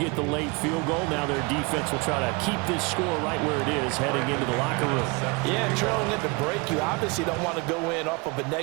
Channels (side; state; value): left; quieter; 28.0 dB